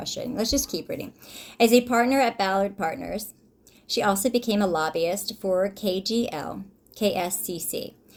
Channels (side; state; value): both; identical; correlation 1.00